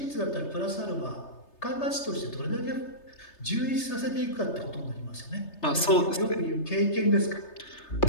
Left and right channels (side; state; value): right; late; 3.3 ms